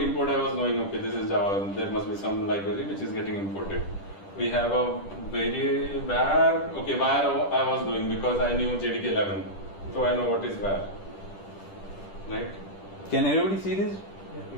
was knowing, okay, this is Java. There must be some library which is getting imported. We have a var. Okay, var I was doing because I knew JDK 11. So I know what is var, right? Can everybody see this?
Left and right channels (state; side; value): late; right; 10 ms